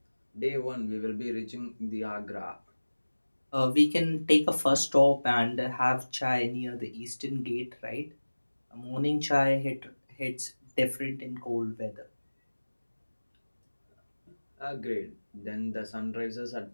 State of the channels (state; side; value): inverted; both; correlation -1.00